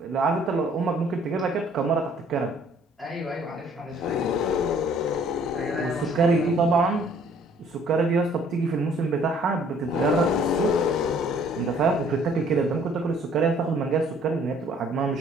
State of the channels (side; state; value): both; normal; correlation 0.58